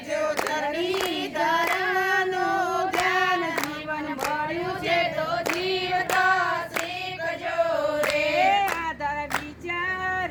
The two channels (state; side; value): identical; both; correlation 1.00